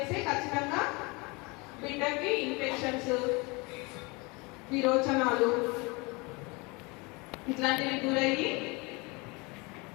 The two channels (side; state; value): right; quieter; 27.2 dB